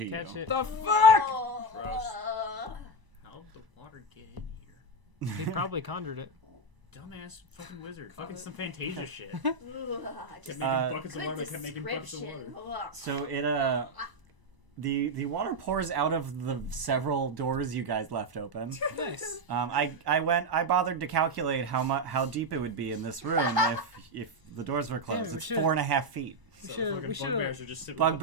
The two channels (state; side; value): late; left; 1.0 ms